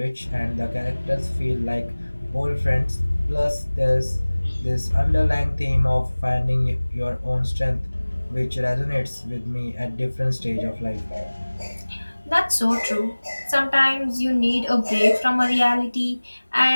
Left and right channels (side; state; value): both; inverted; correlation -1.00